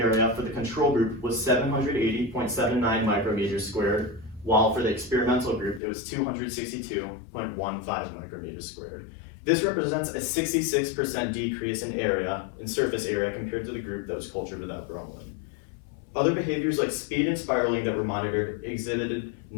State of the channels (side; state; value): right; drops out; at 5.8 s